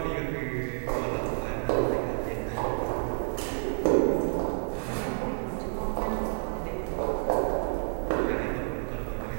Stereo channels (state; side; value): silent; left; digital silence